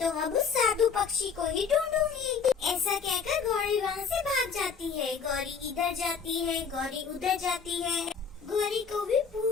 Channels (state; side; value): quieter; right; 6.1 dB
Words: अब उस साधु पक्षी को ही ढूंढूंगी। ऐसा कहकर गौरी वहाँ से भाग जाती है। गौरी इधर जाती है, गौरी उधर जाती है। गौरी को भी